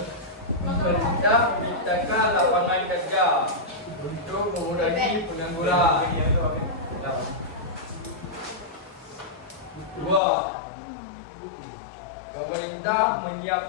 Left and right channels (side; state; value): right; drops out; at 10.2 s